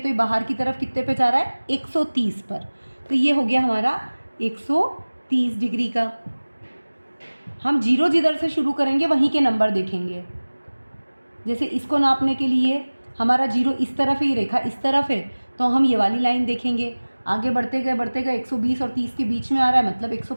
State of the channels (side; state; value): both; inverted; correlation -1.00